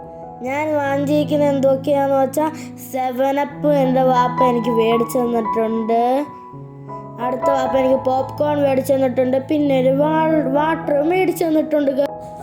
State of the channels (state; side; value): identical; both; correlation 1.00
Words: ഞാൻ വാങ്ങിയിരിക്കുന്നത് എന്തൊക്കെയാണെന്ന് വെച്ചാൽ 7up എൻ്റെ വാപ്പ എനിക്ക് മേടിച്ചു തന്നിട്ടുണ്ട്. അടുത്ത വാപ്പ എനിക്ക് പോപ്കോൺ മേടിച്ചു തന്നിട്ടുണ്ട്. പിന്നെ ഒരു വാട്ടർ മേടിച്ചു തന്നിട്ടുണ്ട്.